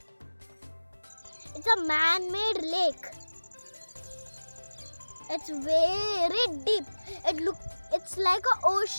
It's a man-made lake. It's very deep. It's like an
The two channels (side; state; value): both; inverted; correlation -1.00